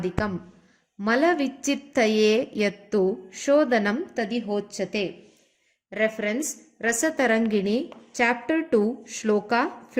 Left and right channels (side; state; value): both; identical; correlation 1.00